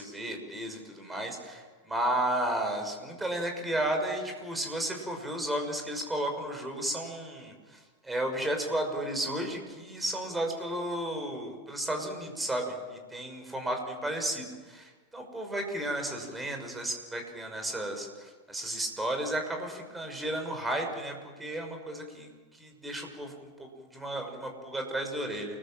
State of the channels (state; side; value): normal; both; correlation 0.55